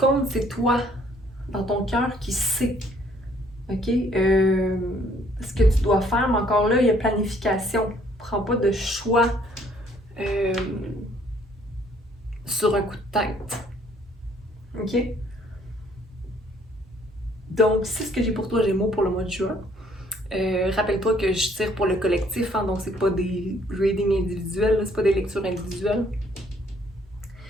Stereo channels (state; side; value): normal; both; correlation 0.63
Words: c'est toi, dans ton cœur, qui sais. OK? Ce que tu dois faire, mais encore là, il y a planification. Prends pas de choix sur un coup de tête. OK? Donc, c'est ce que j'ai pour toi, Gémeaux, pour le mois de juin. Rappelle-toi que je tire pour le collectif, hein, donc c'est pas des readings individuels, c'est pas des lectures individuelles.